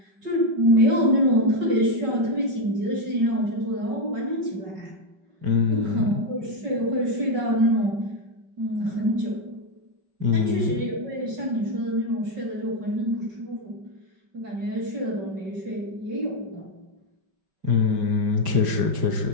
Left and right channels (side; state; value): left; late; 5.2 ms